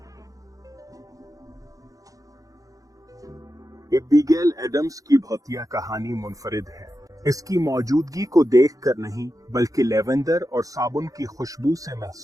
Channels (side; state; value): left; late; 0.17 ms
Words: एबिगेल एडम्स की भौतिया कहानी मुनफरिद है। इसकी मौजूदगी को देखकर नहीं बल्कि लेवेंडर और साबुन की खुशबू से